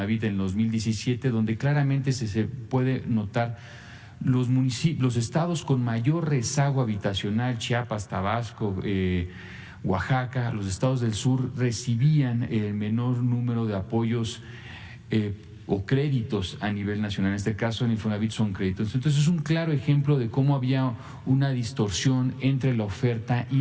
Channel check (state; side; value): identical; both; correlation 1.00